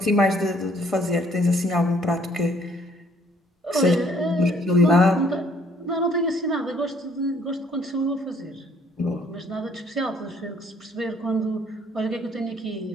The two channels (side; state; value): both; normal; correlation 0.62